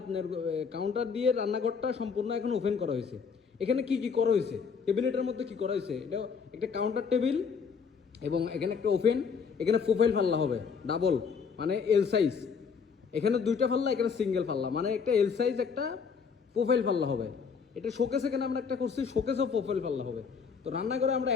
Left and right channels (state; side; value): quieter; right; 5.9 dB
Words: আপনার কাউন্টার দিয়ে রান্নাঘরটা সম্পূর্ণ এখন ওপেন করা হয়েছে। এখানে কি কি করা হয়েছে, টেবিলেটের মধ্যে কি করা হয়েছে, এটা একটা কাউন্টার টেবিল এবং এখানে একটা ওপেন, এখানে প্রোফাইল পাল্লা হবে ডাবল, মানে এল সাইজ। এখানে দুইটা পাল্লা, এখানে সিঙ্গেল পাল্লা, মানে একটা এল সাইজ একটা প্রোফাইল পাল্লা হবে। এটা শোকেস, এখানে আমরা একটা করছি শোকেসও প্রোফাইল পাল্লা হবে। তো রান্নাঘরে আমরা